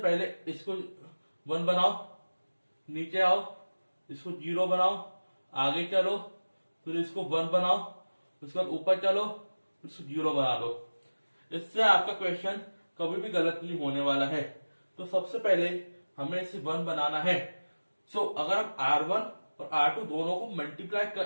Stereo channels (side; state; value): both; inverted; correlation -1.00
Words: इसको 1 बनाओ, नीचे आओ, इसको 0 बनाओ, आगे चलो, फिर इसको 1 बनाओ, उसके बाद ऊपर चलो, फिर इसको 0 बना लो। इससे आपका क्वेश्चन कभी भी गलत नहीं होने वाला है। तो सबसे पहले हमें इसे 1 बनाना है। सो अगर हम R1 और R2 दोनों को मल्टीप्लाई